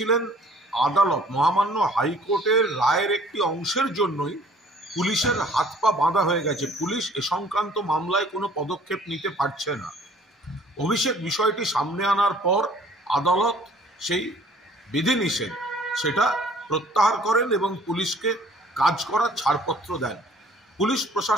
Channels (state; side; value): normal; both; correlation 0.54